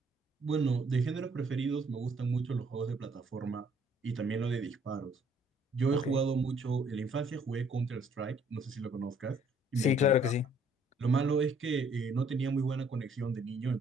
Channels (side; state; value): both; normal; correlation 0.62